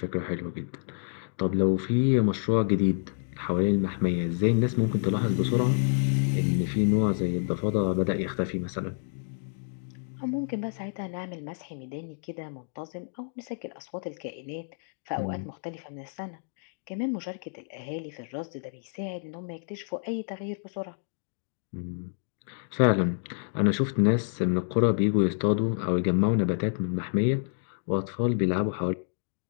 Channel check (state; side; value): silent; right; digital silence